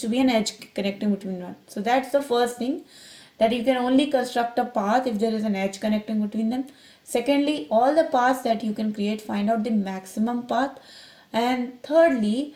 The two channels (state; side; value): identical; both; correlation 1.00